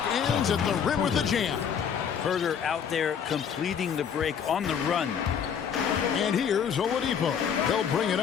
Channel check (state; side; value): quieter; right; 7.6 dB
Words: ends at the rim with the jam. Herter out there completing the break on the run. And here's Oladipo. He'll bring it